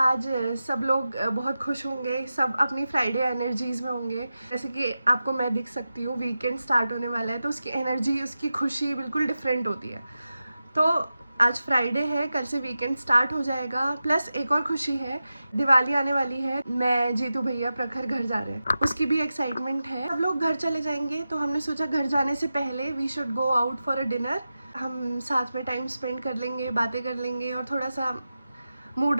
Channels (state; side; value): inverted; both; correlation -0.93